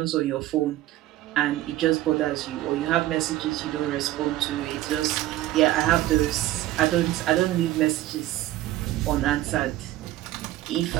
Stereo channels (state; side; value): quieter; left; 15.4 dB